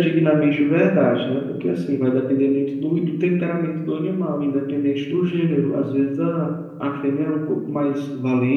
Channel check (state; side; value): identical; both; correlation 1.00